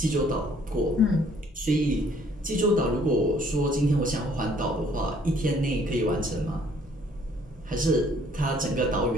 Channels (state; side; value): normal; both; correlation 0.61